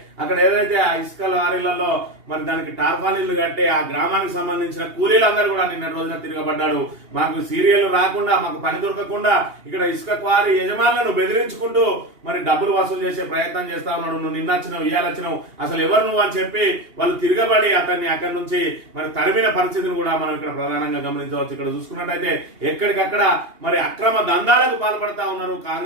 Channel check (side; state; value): left; late; 2.8 ms